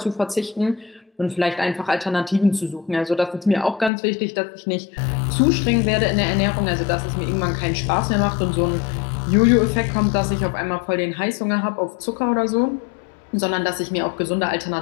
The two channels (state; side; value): drops out; right; at 3.9 s